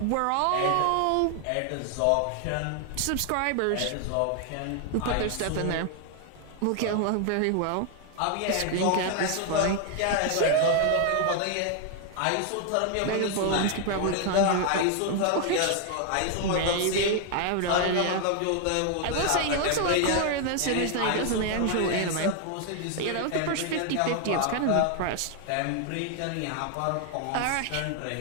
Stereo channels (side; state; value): both; different; correlation 0.00